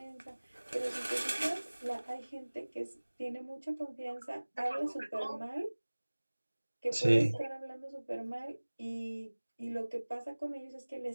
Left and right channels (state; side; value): inverted; both; correlation -1.00